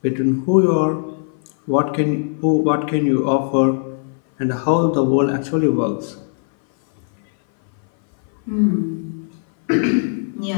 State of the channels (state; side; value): silent; right; 59 dB below the other